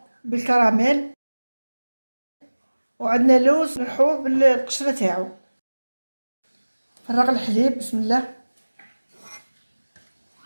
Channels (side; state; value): both; inverted; correlation -1.00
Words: بالكراميل، وعندنا لوز نحوه بالقشرة تاعو. فرغ الحليب بسم الله.